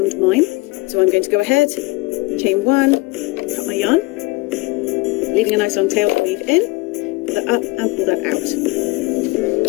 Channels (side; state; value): right; quieter; 23.4 dB